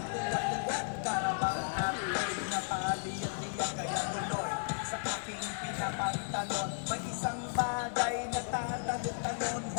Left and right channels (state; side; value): silent; right; 55 dB below the other